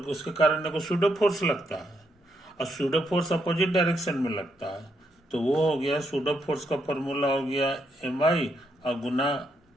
उसके कारण को सूडो फोर्स लगता है, और सूडो फोर्स अपोजिट डायरेक्शन में लगता है, तो वो हो गया सूडो फोर्स का फॉर्मूला हो गया एम आई और गुना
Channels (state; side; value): normal; both; correlation 0.78